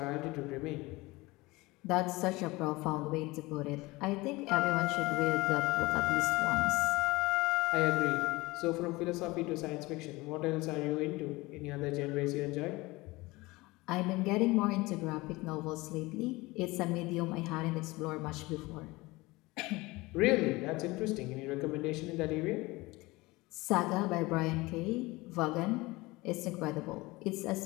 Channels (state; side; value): quieter; right; 21.7 dB